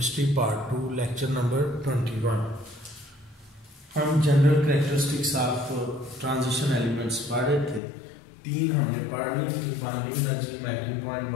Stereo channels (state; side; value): drops out; right; at 7.8 s